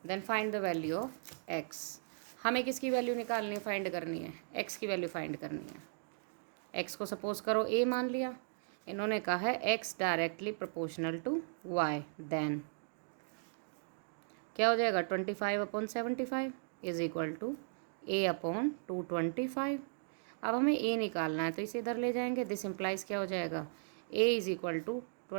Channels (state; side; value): silent; left; digital silence